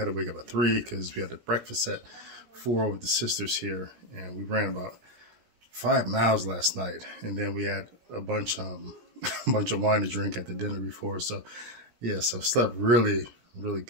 to wake up at 3 because we had the breakfast at 4 with the sisters here, and we ran about 5 miles last night, and then we had a bunch of wine to drink at the dinner before. So yeah, so slept really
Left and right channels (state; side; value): late; left; 17 ms